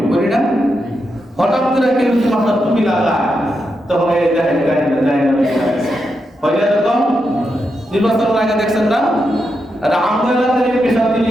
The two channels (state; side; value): normal; both; correlation 0.85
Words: পড়ি না, হঠাৎ করে কেউ যদি মাথার টুপি লাগায় তখন এই দেখায় না হয় না? এরকম নির্বাচনের আগে দেখছেন না, আর আমরা এলাকায় পেশা দিলে